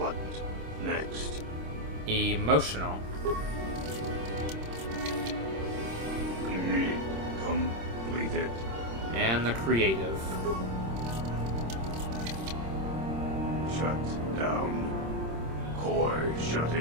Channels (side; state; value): left; late; 26 ms